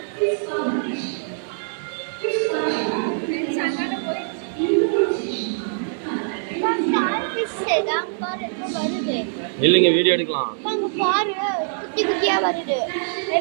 இல்லைங்க வீடியோ எடுக்கலாம். பாரு குட்டி குட்டியா வருது.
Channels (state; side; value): silent; left; digital silence